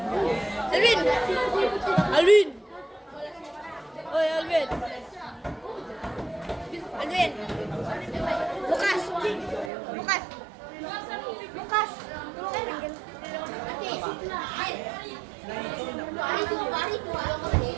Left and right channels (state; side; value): drops out; left; at 9.7 s